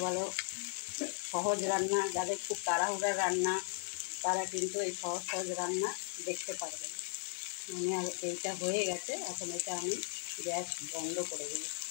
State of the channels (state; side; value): silent; right; 53 dB below the other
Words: ভালো সহজ রান্না, যাদের খুব তাড়াহুড়া রান্না তারা কিন্তু এই সহজ সহজ রান্না দেখতে পারবেন। মানে আর এইটা হয়ে গেছে, এখন এটা আমি গ্যাস বন্ধ করে দেব।